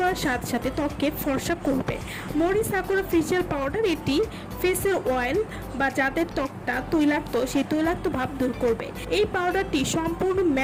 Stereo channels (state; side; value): identical; both; correlation 1.00